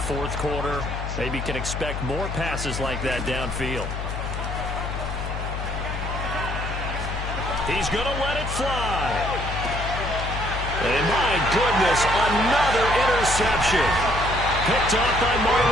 quarter. Maybe can expect more passes like that downfield. He's going to let it fly. And my goodness, another interception. Picked off by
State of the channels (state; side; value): noise; left; hum, 5 dB below the sound